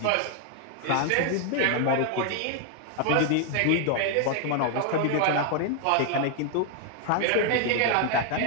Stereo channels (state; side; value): different; both; correlation 0.00